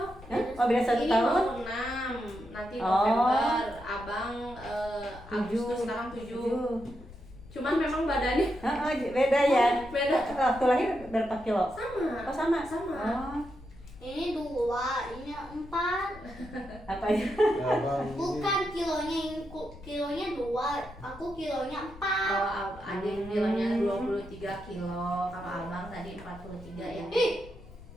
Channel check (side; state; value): left; noise; rumble, 18 dB below the sound